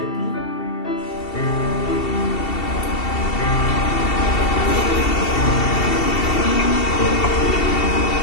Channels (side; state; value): right; late; 2.7 ms